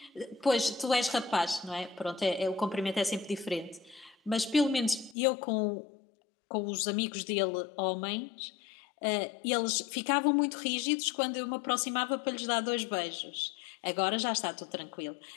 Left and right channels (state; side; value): drops out; right; at 5.2 s